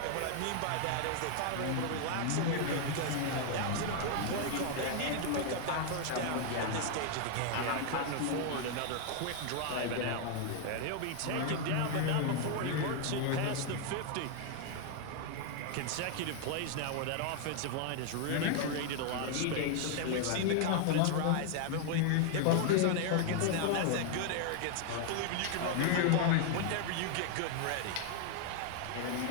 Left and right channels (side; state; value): both; different; correlation 0.00